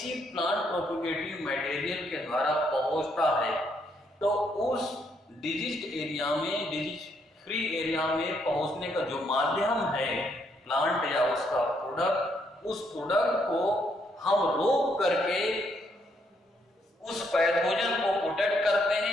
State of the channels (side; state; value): both; normal; correlation 0.73